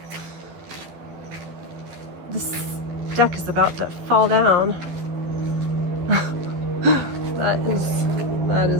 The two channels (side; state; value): left; late; 12 ms